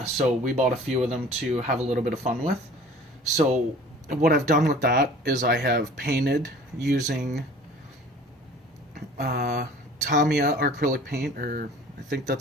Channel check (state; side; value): normal; both; correlation 0.47